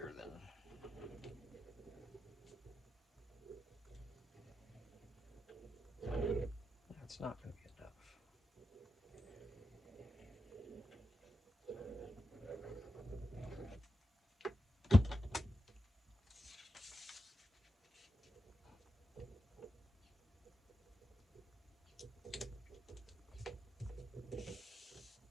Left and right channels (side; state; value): both; normal; correlation 0.89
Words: than that's not going to be enough.